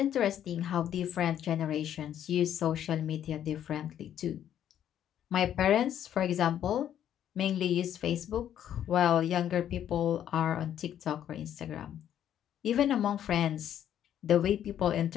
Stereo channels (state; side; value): quieter; right; 10.4 dB